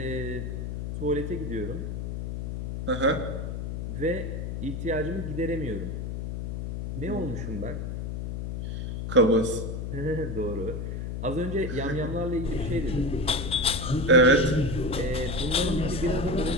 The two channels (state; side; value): noise; left; hum, 4 dB below the sound